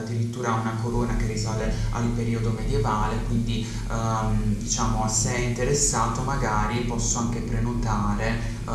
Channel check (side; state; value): both; identical; correlation 1.00